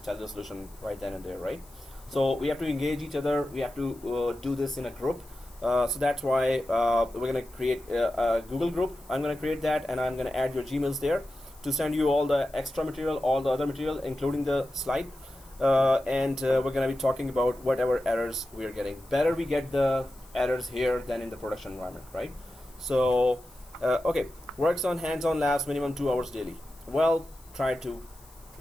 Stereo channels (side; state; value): left; noise; hiss, 25 dB below the sound